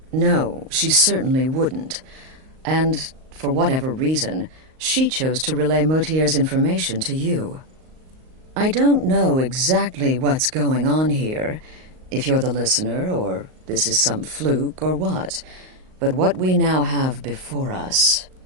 No, she certainly wouldn't. And, for whatever reason, she chose to relay Motier's information to you. I don't know exactly what's going on here, if you're the listener, or this is some fluke, or what. But what we now have before us...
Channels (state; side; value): late; left; 38 ms